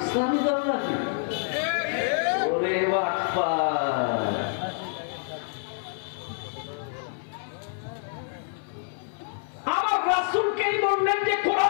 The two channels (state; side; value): silent; right; 56 dB below the other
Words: ইসলামী দল নাকি? ওরে বাপ্পা, আমার রাসূলকেই বললেন যে